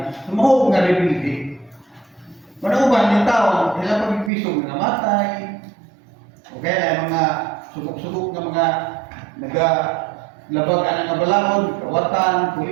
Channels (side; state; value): left; drops out; at 4.3 s